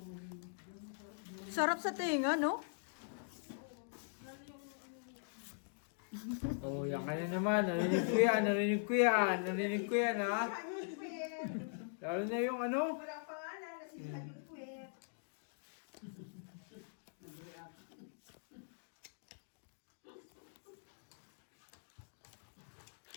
Sarap sa tinga, no? Oh, yan ka na naman. Narinig ko yan, narinig ko yan, narinig ko yan, ha? Lalo na yung ano? Walang pangalan na si Hayun Puwet.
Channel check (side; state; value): right; silent; digital silence